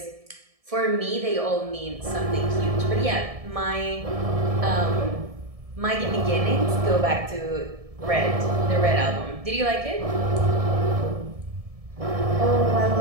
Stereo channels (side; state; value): left; late; 1.7 ms